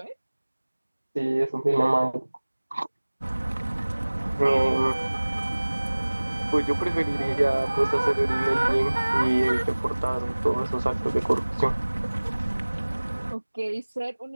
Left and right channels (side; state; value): both; inverted; correlation -1.00